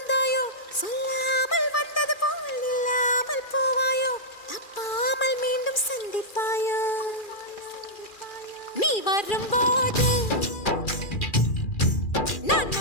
சொல்லாமல் வந்தது போல் இல்லாமல் போவாயோ தப்பாமல் மீண்டும் சந்திப்பாயோ நீ வரும்போது நான்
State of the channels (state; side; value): late; right; 2.4 ms